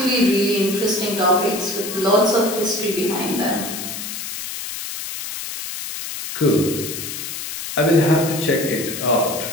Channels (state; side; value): noise; left; hiss, 7 dB below the sound